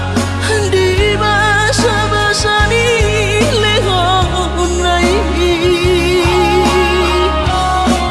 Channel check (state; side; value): identical; both; correlation 1.00